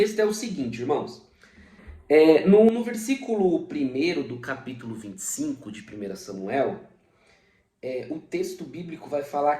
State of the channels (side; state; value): both; identical; correlation 1.00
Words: é o seguinte, irmãos. No versículo 1 do capítulo 25 de 1 Samuel, o texto bíblico vai falar